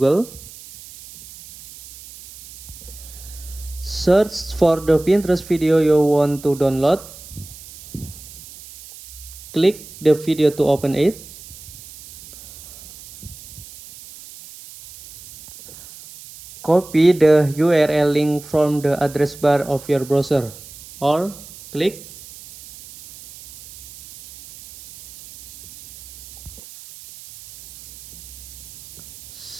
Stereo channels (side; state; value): right; noise; hiss, 18 dB below the sound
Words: Search for the Pinterest video you want to download. Click the video to open it. Copy the URL link from the address bar of your browser, or click